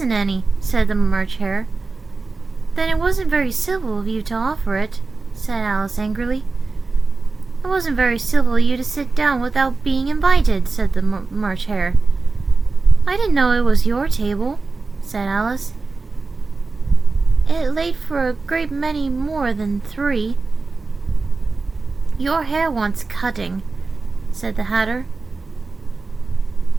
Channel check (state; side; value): quieter; left; 3.9 dB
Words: any, said the March Hare. Then it wasn't very civil of you to offer it, said Alice angrily. It wasn't very civil of you to sit down without being invited, said the March Hare. I didn't know it was your table, said Alice. It laid for a great many more than 3. Your hair wants cutting, said the Hatter.